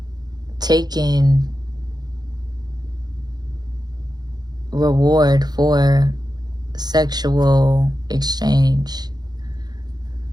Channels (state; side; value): late; left; 0.20 ms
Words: taking reward for sexual exchange.